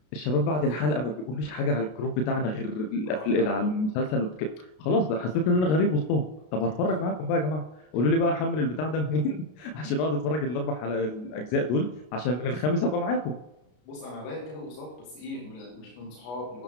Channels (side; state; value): right; late; 33 ms